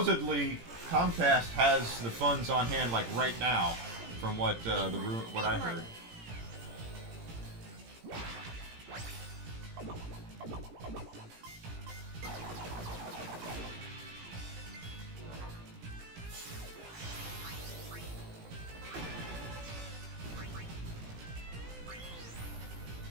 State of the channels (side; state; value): left; late; 17 ms